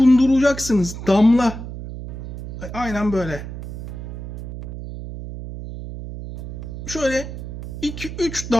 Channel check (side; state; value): right; noise; hum, 10 dB below the sound